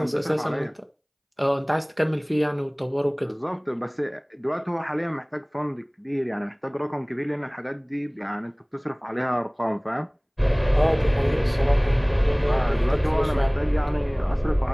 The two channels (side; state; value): both; identical; correlation 1.00